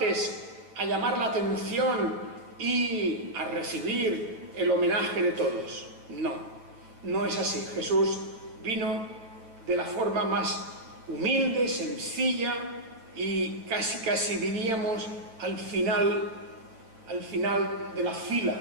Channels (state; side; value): late; left; 9.0 ms